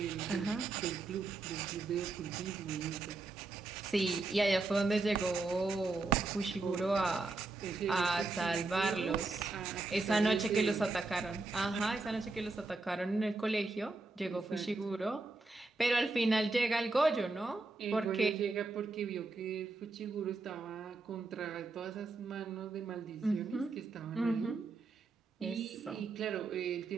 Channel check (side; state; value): left; quieter; 3.5 dB